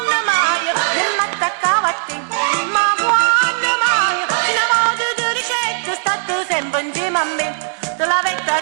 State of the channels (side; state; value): left; silent; digital silence